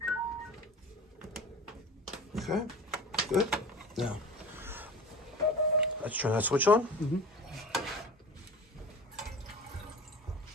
Okay, good. Now, let's turn that switch on.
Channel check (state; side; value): normal; both; correlation 0.36